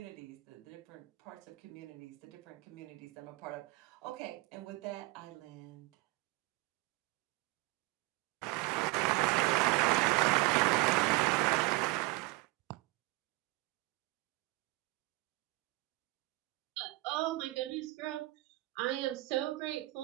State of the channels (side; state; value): left; quieter; 21.5 dB